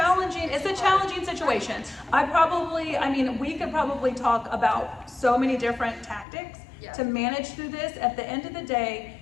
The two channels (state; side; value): drops out; right; at 6.2 s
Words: situation. We could probably talk about so many different tactics to manage through this. At the end of the day,